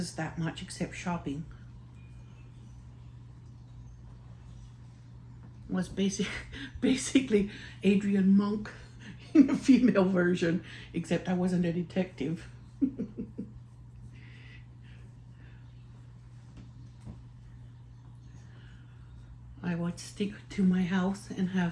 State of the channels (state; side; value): identical; both; correlation 1.00